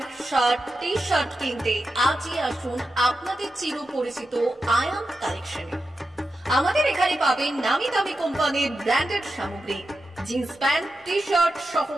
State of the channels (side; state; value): both; normal; correlation 0.90